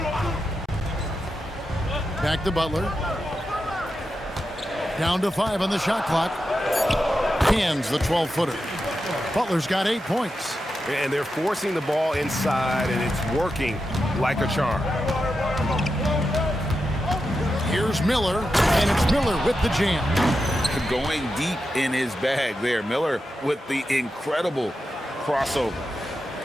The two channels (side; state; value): both; normal; correlation 0.89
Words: Back to Butler. Down to 5 on the shot clock. Hands the 12-footer. Butler's got 8 points. And they're forcing the ball inside, and it's working like a charm. Here's Miller, and it's Miller with the jam. Going deep in his bag there. Miller with the incredible crossover.